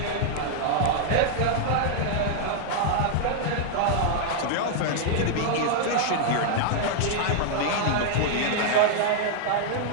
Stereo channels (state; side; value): different; both; correlation -0.01